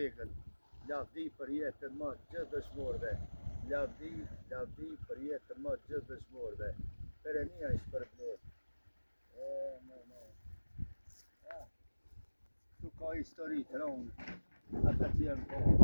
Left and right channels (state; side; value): inverted; both; correlation -1.00